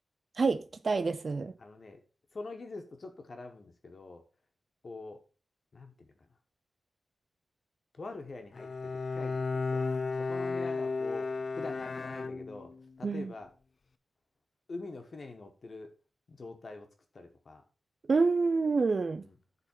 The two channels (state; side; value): normal; both; correlation 0.92